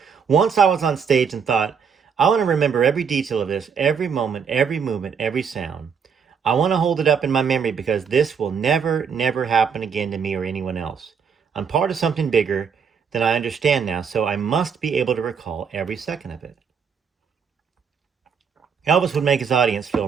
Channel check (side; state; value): left; quieter; 6.5 dB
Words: Once I was on stage and thought, I want to remember every detail of this, every moment, every movement, every sound. I want to hold it up in my memory because this will never, never happen again to me or anyone else. I'm part of something bigger than I understand now, so I must be able to recall every second of it. Elvis would make his audience feel